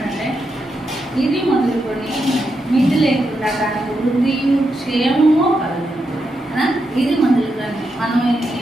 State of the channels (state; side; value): normal; both; correlation 0.84